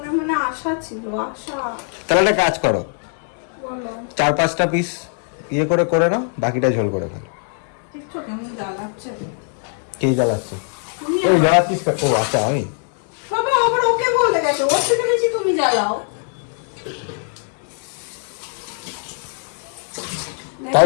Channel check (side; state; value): right; silent; 55 dB below the other